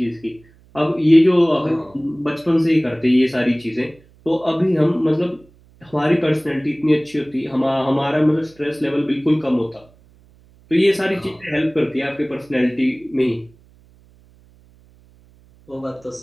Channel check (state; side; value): noise; right; hum, 29 dB below the sound